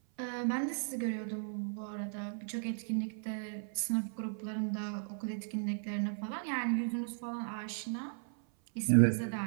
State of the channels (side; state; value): left; silent; 54 dB below the other